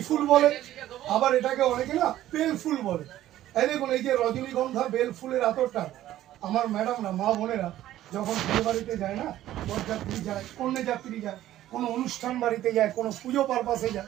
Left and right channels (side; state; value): left; quieter; 13.5 dB